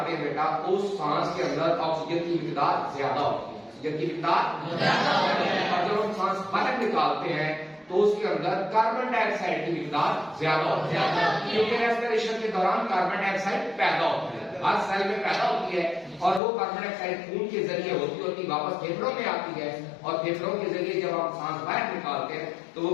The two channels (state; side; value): drops out; right; at 16.4 s